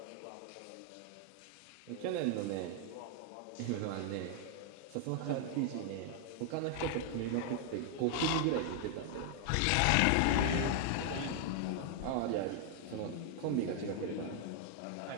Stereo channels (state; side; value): different; both; correlation 0.00